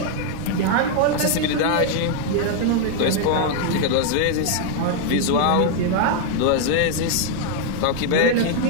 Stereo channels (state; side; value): different; both; correlation 0.00